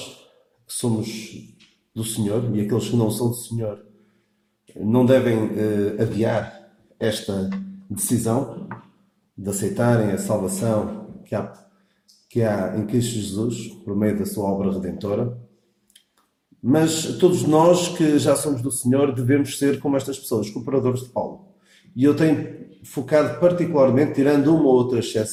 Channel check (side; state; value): both; identical; correlation 1.00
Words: que somos do Senhor e aqueles que não são do Senhor não devem adiar esta decisão de aceitarem a salvação que há em Cristo Jesus por meio da sua obra redentora. Mas todos nós que já somos do Senhor devemos ser como estas pessoas, cooperadores de Paulo. E eu tenho focado particularmente, tirando uma ou outra